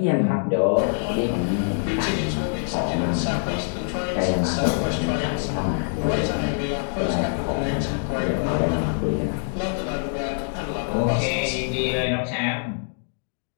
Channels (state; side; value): silent; right; digital silence